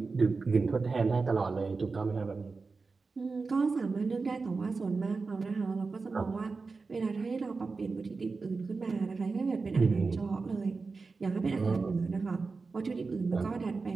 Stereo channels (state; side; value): quieter; left; 4.3 dB